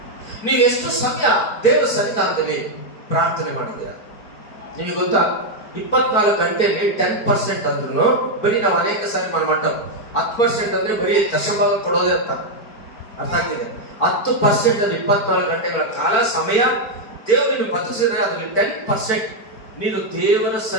ನೀವು ಎಷ್ಟು ಸಮಯ ದೇವರ ಸನ್ನಿಧಾನದಲ್ಲಿ ಪ್ರಾರ್ಥನೆ ಮಾಡಿದ್ದೀರಾ? ನಿಮಗೆ ಗೊತ್ತಾ, 24 ಗಂಟೆಯಲ್ಲಿ 10% ಅಂದ್ರೂ ಬರೀ ನಾವು ಅನೇಕ ಸಾರಿ ಮಟ್ಟ 10% ಅಂದ್ರೆ ಬರೀ ದಶಭಾಗ ಕೊಡೋದೇ ಅರ್ಥ ಆಗ್ತಿದೆ. 10% ಅಲ್ಲಿ 24 ಗಂಟೆಗಳ ಕಾಲ ಸಮಯ ದೇವರನ್ನು ಬದುಕಿಸಿದ್ರೆ ಅದರಲ್ಲಿ 10% ನೀನು ದೇವರ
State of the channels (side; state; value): right; late; 4.5 ms